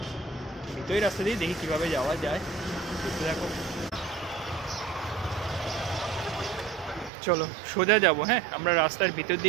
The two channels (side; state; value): left; drops out; at 7.1 s